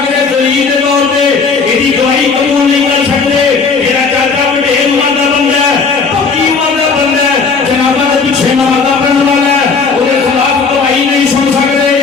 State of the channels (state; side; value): quieter; right; 4.9 dB